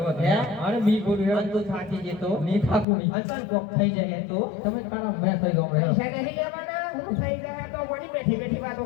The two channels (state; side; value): drops out; right; at 2.9 s